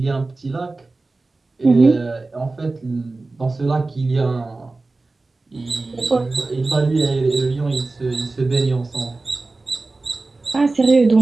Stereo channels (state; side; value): quieter; left; 3.4 dB